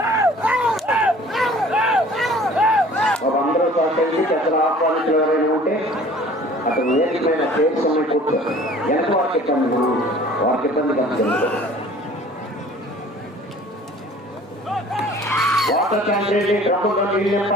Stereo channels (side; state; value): both; normal; correlation 0.49